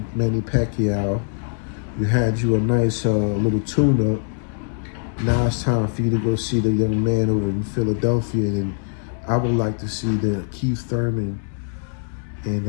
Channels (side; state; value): right; silent; digital silence